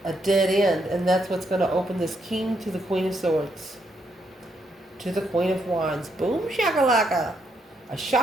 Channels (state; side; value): normal; both; correlation 0.76